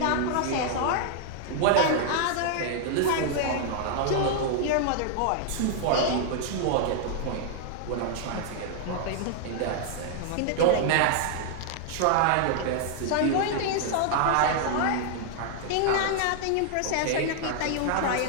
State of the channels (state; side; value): different; both; correlation -0.01